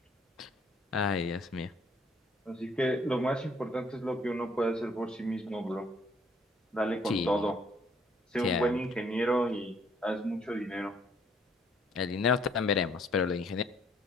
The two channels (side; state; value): both; normal; correlation 0.64